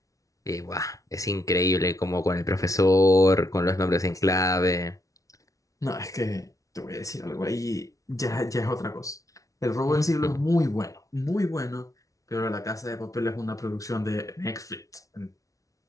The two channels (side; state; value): right; late; 0.17 ms